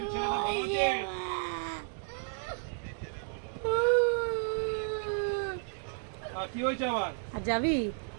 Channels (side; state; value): left; silent; 56 dB below the other